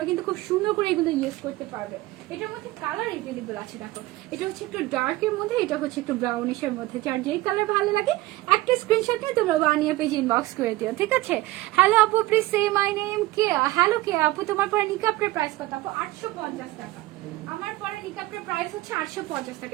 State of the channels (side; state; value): left; quieter; 18.2 dB